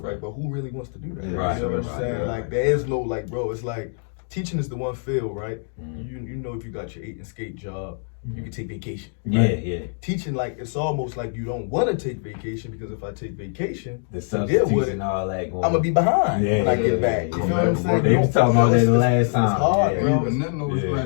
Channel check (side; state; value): right; silent; digital silence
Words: right? But who really wants to do that? Yeah, Right, You know what I'm right, saying? right. Like there is no like, bro. It's like teaching is the one field, right? Mhm. You know, if you got your 8 and skate job, you can take vacation. Yeah, right? yeah. Teaching, like, it's almost like you don't want to take vacation because if I take vacation, The deal with substitutes it, and all that going. I'm gonna be behind Yeah, when I yeah, get back. You yeah. know what I'm saying? They was talking about that the last time. It's hard, Yeah. bro. And then though, Yeah.